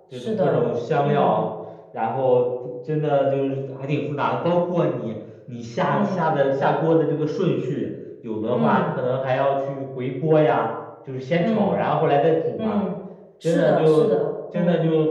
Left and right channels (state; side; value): identical; both; correlation 1.00